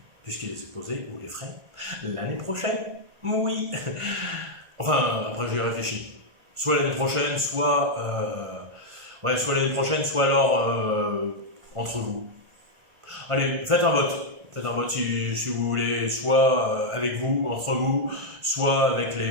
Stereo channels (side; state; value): left; late; 1.5 ms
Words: Puisqu'il est exposé, vous les ferez l'année prochaine. Oui. Enfin, après, j'y réfléchis. Soit l'année prochaine, soit l'année prochaine, soit alors entre vous. Allez, faites un vote. Faites un vote si vous voulez, soit avec vous, entre vous, soit avec